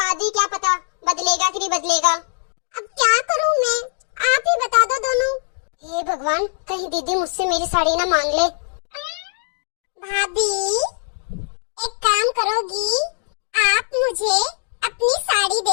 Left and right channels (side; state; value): right; silent; digital silence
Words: ही क्या पता बदलेगा कि नहीं बदलेगा। अब क्या करूँ मैं, आप ही बता दो दोनों। हे भगवान, कहीं दीदी मुझसे मेरी साड़ी ना मांग ले। भाभी एक काम करोगी, आप मुझे अपनी साड़ी